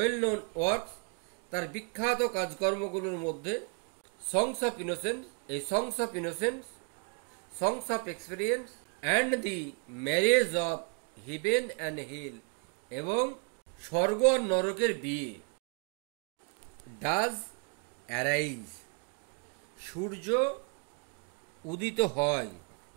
known works, তার বিখ্যাত কাজকর্মগুলোর মধ্যে সংস অফ ইনোসেন্স, এই songs of innocence, songs of experience, and the marriage of heaven and hell, এবং স্বর্গ আর নরকের বিয়ে। ডাজ অ্যারাইজ, সূর্য উদিত হয়,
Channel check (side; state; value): left; quieter; 34.1 dB